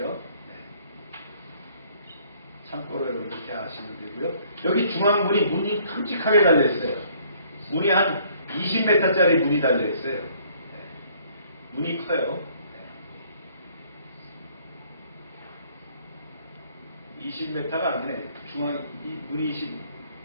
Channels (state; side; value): inverted; both; correlation -0.61